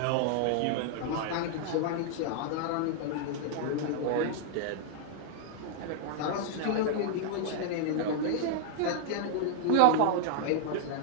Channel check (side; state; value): both; different; correlation -0.01